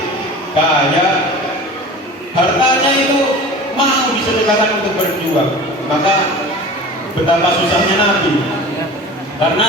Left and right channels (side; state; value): both; normal; correlation 0.38